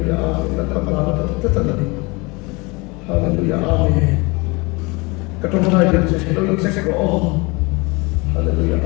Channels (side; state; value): right; quieter; 26.5 dB